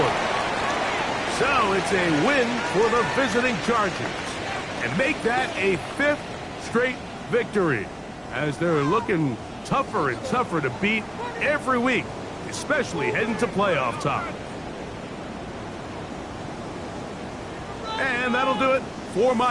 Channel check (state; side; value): identical; both; correlation 1.00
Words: So it's a win for the visiting Chargers, and make that a 5th straight victory, as they're looking tougher and tougher to beat every week, especially heading to playoff time. And that'll do it for